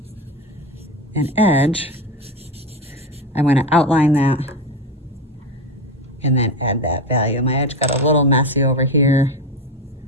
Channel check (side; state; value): both; normal; correlation 0.18